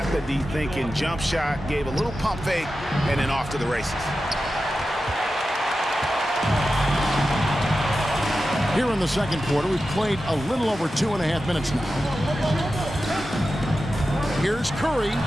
the D thinking. Jump shot. Gave a little pump fake. And then off to the races. Here in the second quarter, we've played a little over 2.5 minutes now. Here's Curry.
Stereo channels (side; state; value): both; normal; correlation 0.92